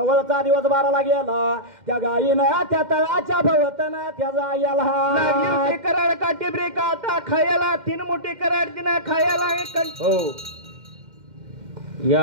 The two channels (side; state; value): left; late; 2.1 ms